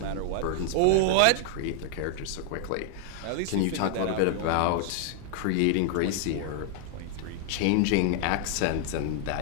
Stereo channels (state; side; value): different; both; correlation 0.00